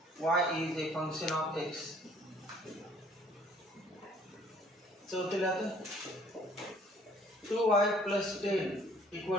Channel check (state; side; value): normal; both; correlation 0.57